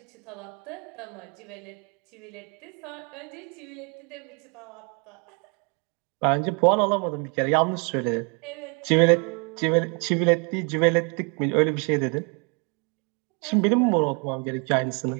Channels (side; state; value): left; quieter; 34.7 dB